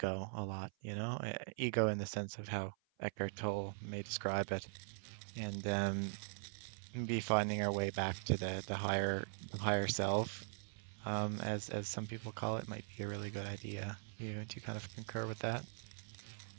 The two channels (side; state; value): left; silent; 50 dB below the other